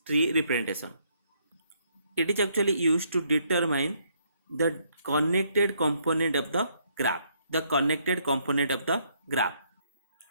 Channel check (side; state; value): both; inverted; correlation -0.71